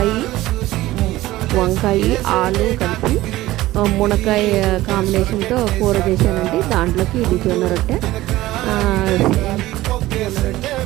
వంకాయ ఆలు కలిపి మునక్కాయ కాంబినేషన్తో కూర చేశానండి. దాంట్లోకి ఇది జొన్న రొట్టె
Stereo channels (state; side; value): quieter; left; 16.8 dB